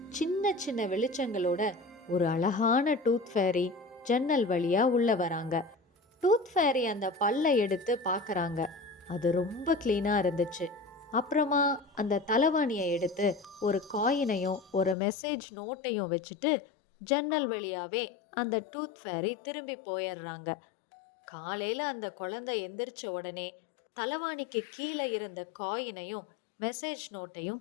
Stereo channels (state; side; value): drops out; right; at 15.0 s